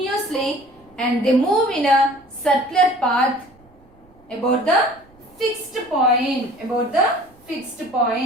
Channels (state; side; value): noise; right; rumble, 30 dB below the sound